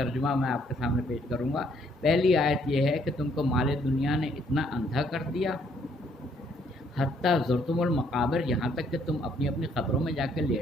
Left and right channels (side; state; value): both; normal; correlation 0.67